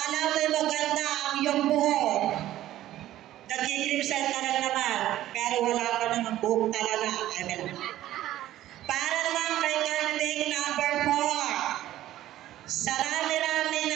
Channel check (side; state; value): left; quieter; 13.8 dB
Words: mo'y maganda ang iyong buhok, nagkikrimsel ka lang naman, pero wala ka namang buhok talaga. Amen. Para naman kay candidate number 4, sa rami-rami